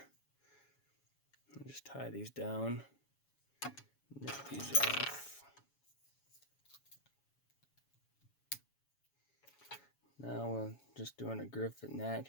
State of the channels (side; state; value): right; late; 7.1 ms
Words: I'll just tie these down, nip these off. Now we're just doing a griffin gnat